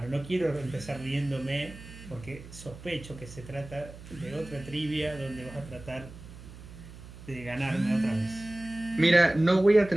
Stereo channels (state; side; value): noise; right; hum, 16 dB below the sound